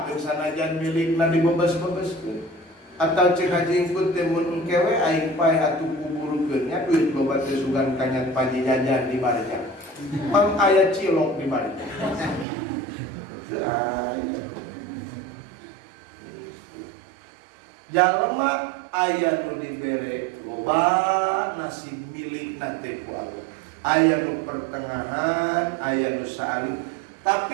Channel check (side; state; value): left; drops out; at 12.5 s